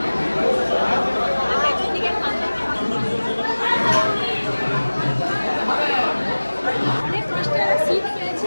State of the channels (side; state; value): both; inverted; correlation -1.00